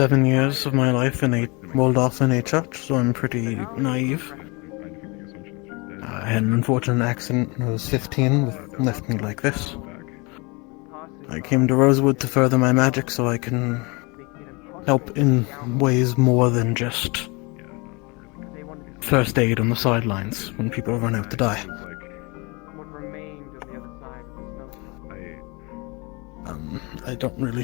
years of my life in a walled-off in a church, so I'm pretty naive. I had an unfortunate accident when I was 15 that left me like this. I came to Rosewood to further my magic so I can help in ways more than just first aid on the sidelines when people run out to die. I don't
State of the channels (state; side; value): quieter; right; 28.2 dB